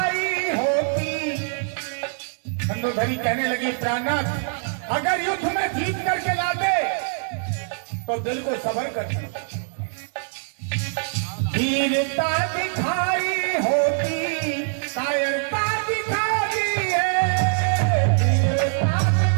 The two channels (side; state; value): left; silent; digital silence